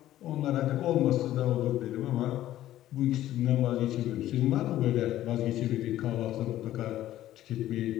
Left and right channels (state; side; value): quieter; right; 13.6 dB